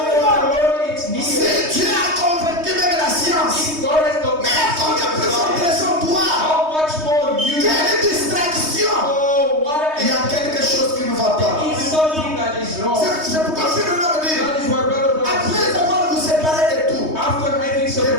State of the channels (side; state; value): left; late; 3.2 ms